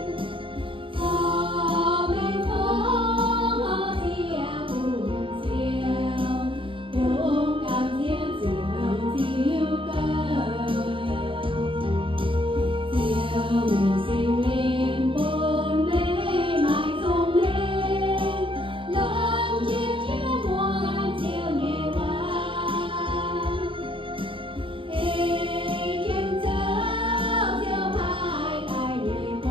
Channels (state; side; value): late; left; 0.25 ms